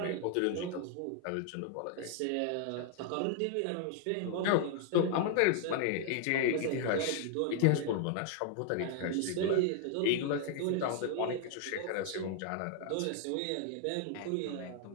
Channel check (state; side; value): different; both; correlation 0.00